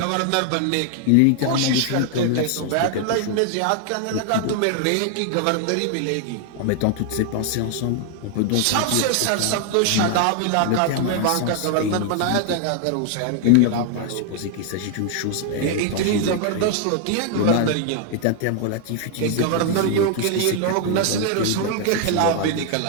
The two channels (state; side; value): different; both; correlation 0.00